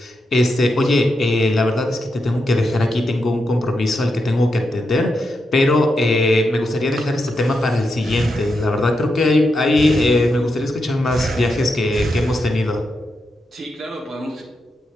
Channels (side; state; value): both; normal; correlation 0.85